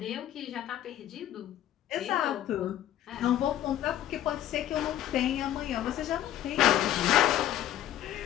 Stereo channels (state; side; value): quieter; right; 12.3 dB